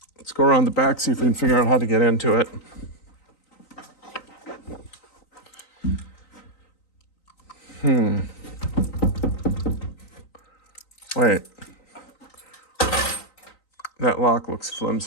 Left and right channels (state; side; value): late; right; 3.9 ms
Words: go around the back, see if we can figure out how to get into it. Wait. That lock looks